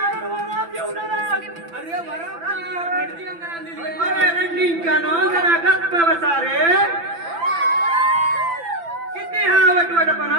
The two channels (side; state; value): left; late; 5.9 ms